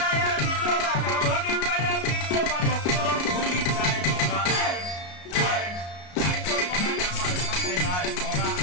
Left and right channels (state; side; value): late; right; 33 ms